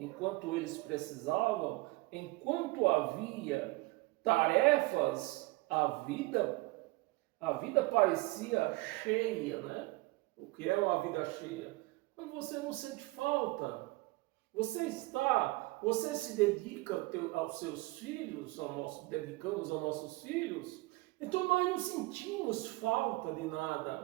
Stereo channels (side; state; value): left; quieter; 22.2 dB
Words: havia tarefas, a vida parecia cheia, né? O que é uma vida cheia? Mas você não sente falta. Você se dedica aos seus filhos, dedicamos aos nossos filhos. Então nós não sentimos falta de